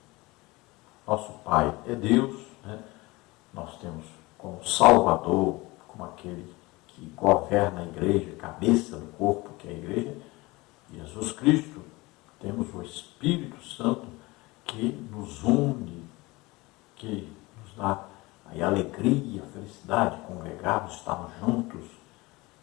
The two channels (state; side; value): quieter; right; 22.4 dB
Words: Nosso Pai é Deus, né? Nós temos como Salvador, como aquele que governa a igreja, cabeça do corpo que é a igreja, Jesus Cristo. Temos o Espírito Santo que nos une, que nos dá aí alegria, felicidade, congregarmos, estarmos juntos,